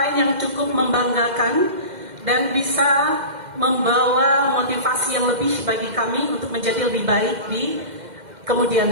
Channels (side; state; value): left; late; 2.1 ms